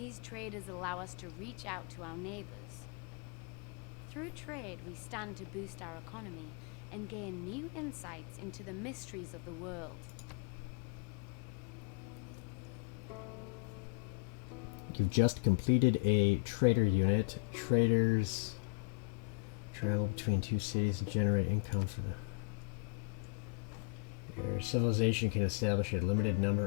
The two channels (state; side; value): quieter; right; 33.0 dB